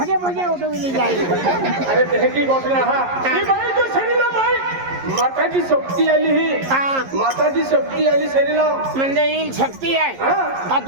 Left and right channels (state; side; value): late; left; 11 ms